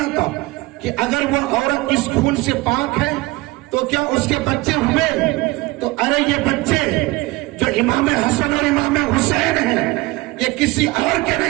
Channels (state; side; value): quieter; left; 21.5 dB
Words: کہ اگر وہ عورت اس خون سے پاک ہے تو کیا اس کے بچے ہوئے؟ تو ارے یہ بچے جو امام حسن اور امام حسین ہیں، یہ کسی اور کے